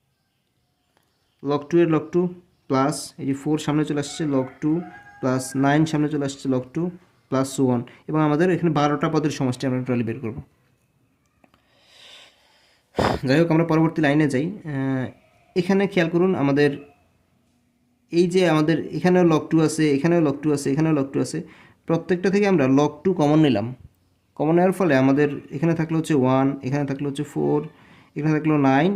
লগ 2 এর লগ 2 প্লাস এই যে 4 সামনে চলে আসছে লগ 2 প্লাস 9 সামনে চলে আসছে লগ 2 প্লাস 1, এবং আমাদের এখানে 12টা পদের সমষ্টি আমরা টোটালি বের করব। যাই হোক, আমরা পরবর্তী লাইনে যাই। এখানে খেয়াল করুন, আমাদের এই যে আমাদের এখানেও লগ 2 আছে, এখানেও লগ 2 আছে, এখানেও লগ 2 আছে, প্রত্যেকটা থেকে আমরা লগ 2 কমন নিলাম। কমন নেওয়ার ফলে আমাদের এখানে থাকলো হচ্ছে 1, এখানে থাকলো হচ্ছে 4, এখানে থাকলো 9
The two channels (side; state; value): both; identical; correlation 1.00